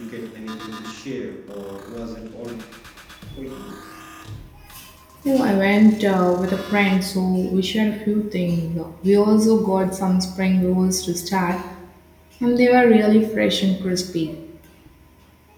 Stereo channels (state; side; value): identical; both; correlation 1.00